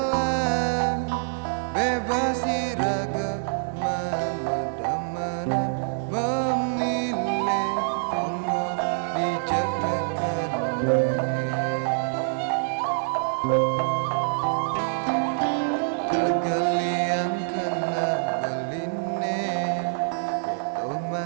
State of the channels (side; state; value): left; silent; digital silence